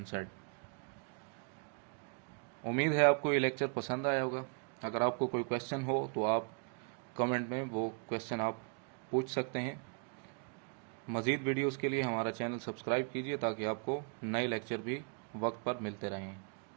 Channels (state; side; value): quieter; left; 39.1 dB